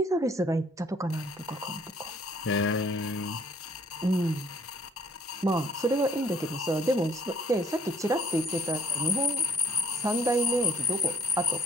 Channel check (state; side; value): normal; both; correlation 0.59